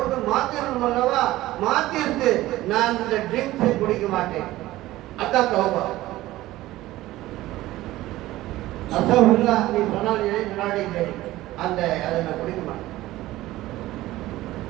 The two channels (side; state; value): left; quieter; 16.5 dB